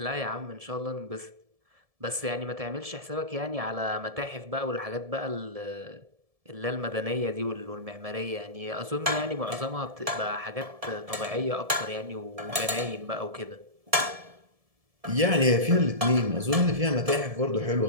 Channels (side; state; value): left; late; 1.7 ms